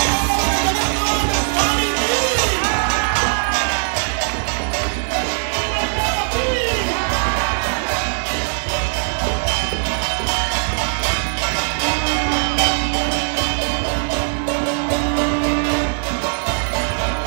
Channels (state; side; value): silent; left; 66 dB below the other